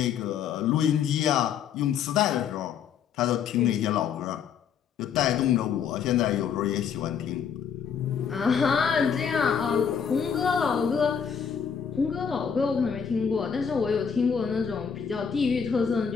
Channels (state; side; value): quieter; right; 7.3 dB